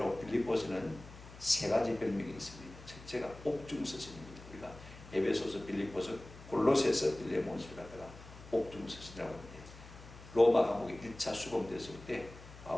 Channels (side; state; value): left; noise; hum, 17 dB below the sound